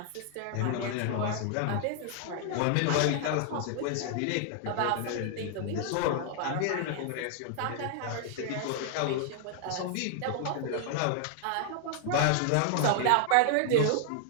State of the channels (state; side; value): different; both; correlation 0.00